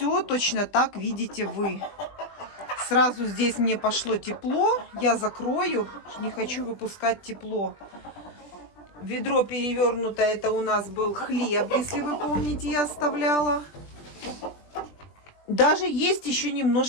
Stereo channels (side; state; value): right; late; 20 ms